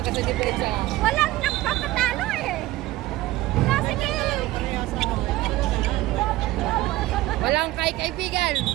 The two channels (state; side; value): quieter; left; 17.2 dB